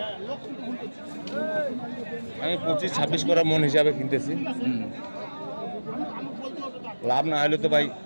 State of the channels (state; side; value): inverted; both; correlation -1.00